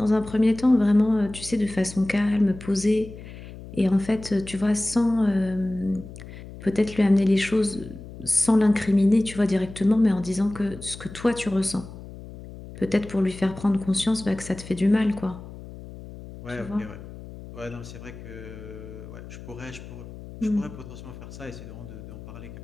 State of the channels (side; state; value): left; noise; hum, 14 dB below the sound